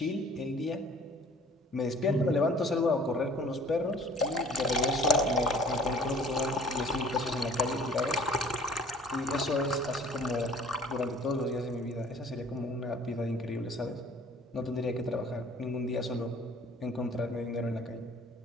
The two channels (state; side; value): normal; both; correlation 0.50